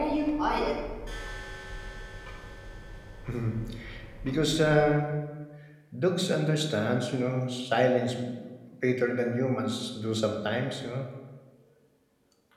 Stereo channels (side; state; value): both; identical; correlation 1.00